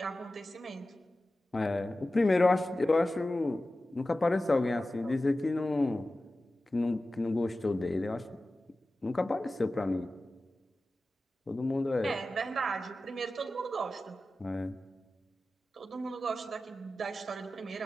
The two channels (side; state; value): both; normal; correlation 0.95